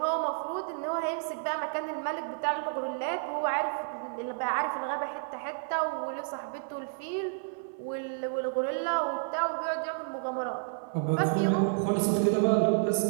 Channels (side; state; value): left; silent; 57 dB below the other